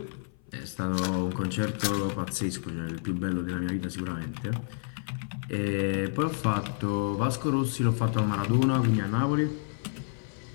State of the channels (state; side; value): silent; right; 56 dB below the other